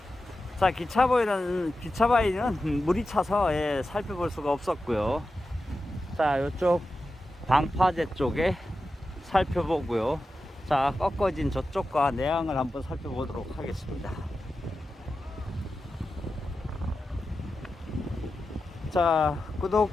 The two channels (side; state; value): both; normal; correlation 0.92